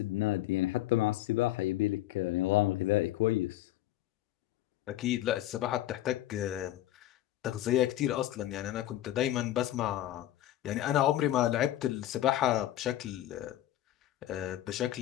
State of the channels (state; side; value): quieter; right; 13.8 dB